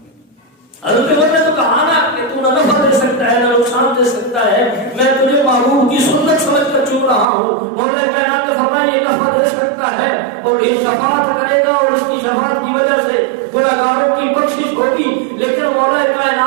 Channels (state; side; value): drops out; left; at 7.2 s